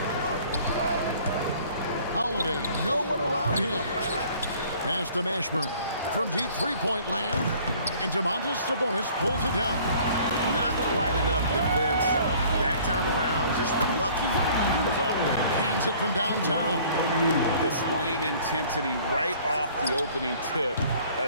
Holiday, no one around him. Pass to Mashburn. From deep 3-point land. And Domantas Sabonis pulls it down. Not quite enough defense. That time around, just lucky he was off. Hands it from downtown. Displaying intensity right off the opening tip,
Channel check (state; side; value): inverted; both; correlation -0.53